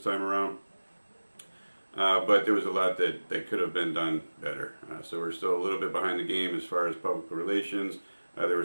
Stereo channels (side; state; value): both; inverted; correlation -1.00